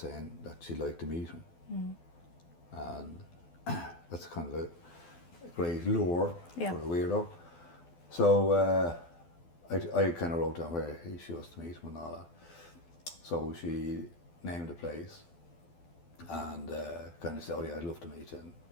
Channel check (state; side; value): late; right; 12 ms